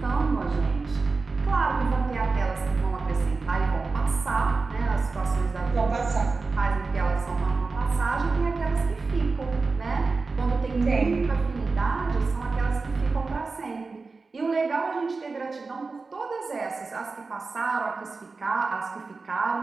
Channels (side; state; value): left; quieter; 4.1 dB